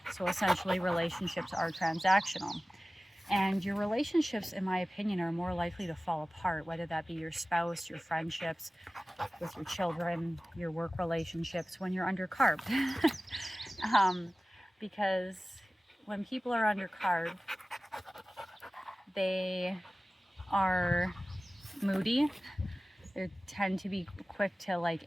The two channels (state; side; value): normal; both; correlation 0.97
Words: so essentially relationships are transactional. And your relationships, in my opinion, are more likely to fall apart, whether that be your spouse, your friendships with your children, your work relationships, when you're under carb. Because when people are under carb, they are moody. They tend to be quick to like